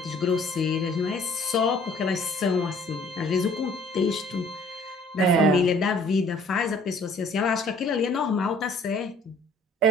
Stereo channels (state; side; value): normal; both; correlation 0.57